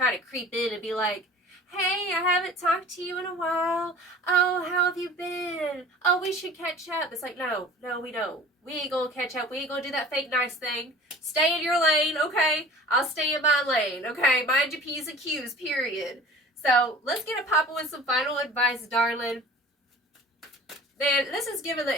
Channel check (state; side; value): normal; both; correlation 0.43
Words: to creep in and be like, hey, I haven't talked to you in a while. Oh, how have you been? Oh, we should catch up. It's like, no, we don't. We ain't gonna catch up. We ain't gonna do that fake nice thing. Stay in your lane, okay? I'll stay in my lane, okay? Mind your P's and Q's, period. So, let's get a pop with some final advice, darling. Man, this is giving